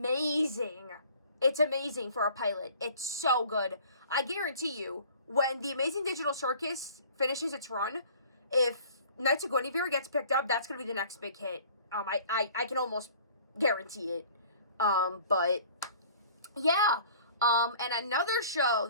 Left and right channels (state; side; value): inverted; both; correlation -0.50